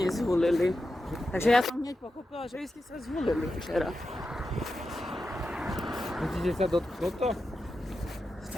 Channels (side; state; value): both; normal; correlation 0.90